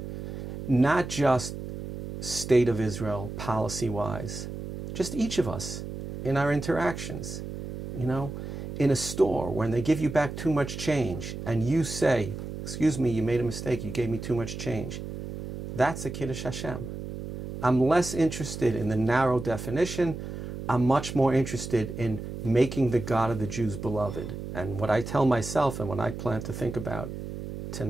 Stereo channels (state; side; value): noise; right; hum, 8 dB below the sound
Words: Not just State of Israel, policy-wise. Just each of us in our interactions. In a store, when they give you back too much change and you say, excuse me, you made a mistake, you gave me too much change. That's a Kiddush Hashem. I'm less interested in the narrow definition. I'm much more interested in making the God of the Jews beloved. And what I tell myself and what I plan to think about